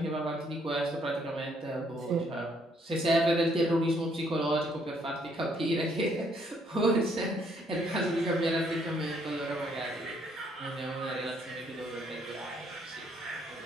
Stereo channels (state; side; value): normal; both; correlation 0.68